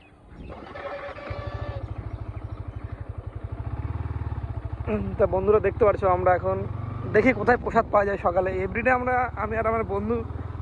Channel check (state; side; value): identical; both; correlation 1.00